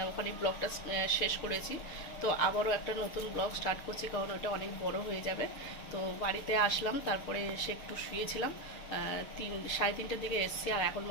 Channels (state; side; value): late; right; 6.7 ms